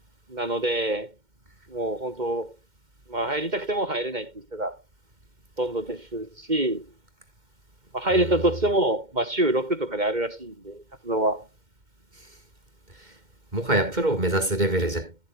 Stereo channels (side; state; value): left; late; 2.1 ms